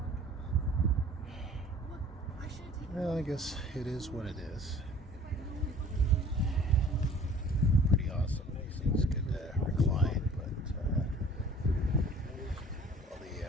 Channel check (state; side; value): normal; both; correlation 0.49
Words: Well, I guess it is what it is. Pretty awesome. These things could recline, but all